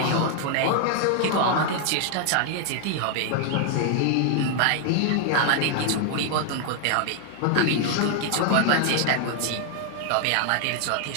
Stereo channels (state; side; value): different; both; correlation 0.00